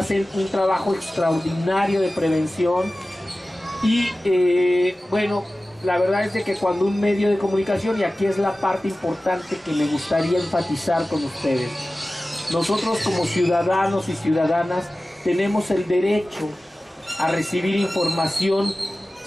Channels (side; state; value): both; normal; correlation 0.96